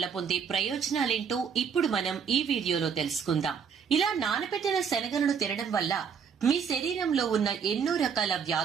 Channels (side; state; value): left; quieter; 6.8 dB